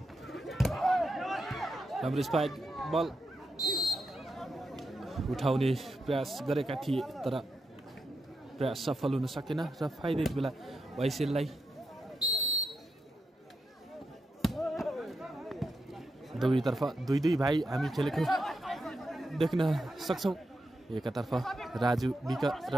राम्रो स्पाइक बल उठाउने प्रयास गरेका थिए तर प्रयास सफल हुन सकेन र फाइदा यति बेला ओएसएललाई दुवैतर्फ 2-2 भाइ हामी खेलेको देख्न सक्छौँ एकतर्फ राजु विक र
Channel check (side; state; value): both; normal; correlation 0.86